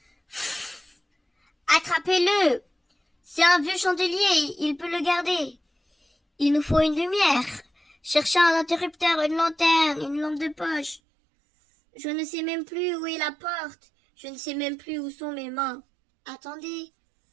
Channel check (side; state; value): left; drops out; at 11.0 s